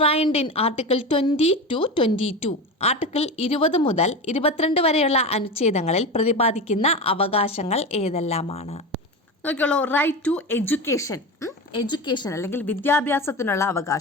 in article 20-22? Article 20 മുതൽ 22 വരെയുള്ള അനുച്ഛേദങ്ങളിൽ പ്രതിപാദിക്കുന്ന അവകാശങ്ങൾ ഏതെല്ലാമാണ്? നോക്കിയോളൂ, റൈറ്റ് ടു എഡ്യൂക്കേഷൻ, എഡ്യൂക്കേഷൻ അല്ലെങ്കിൽ വിദ്യാഭ്യാസത്തിനുള്ള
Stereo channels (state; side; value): normal; both; correlation 0.25